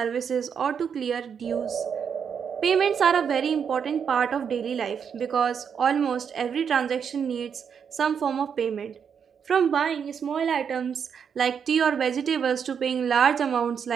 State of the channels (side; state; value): left; quieter; 7.2 dB